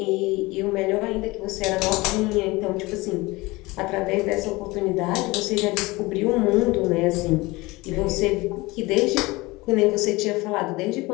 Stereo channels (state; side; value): quieter; right; 22.1 dB